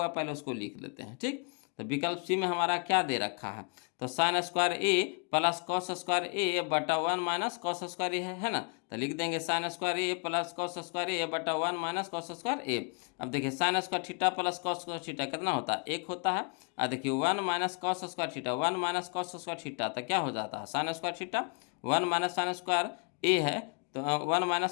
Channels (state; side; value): quieter; right; 38.7 dB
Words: पहले उसको लिख लेते हैं, ठीक। तो विकल्प सी में हमारा क्या दे रखा है, तो sign square A plus cos square A बटा 1 माइनस कॉस स्क्वायर ए है ना। तो लिख देंगे sine square A plus cos square A बटा 1 माइनस कॉस स्क्वायर ए। अब देखिए sine square theta plus cos square theta कितना होता है, एक होता है। और देखिए 1 minus cos square theta, 1 minus cos square theta, तो क्या हो जाता है sine square theta, 1 minus sine square A है, तो 1